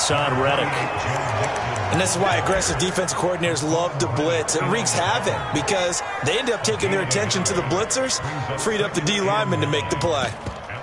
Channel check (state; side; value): identical; both; correlation 1.00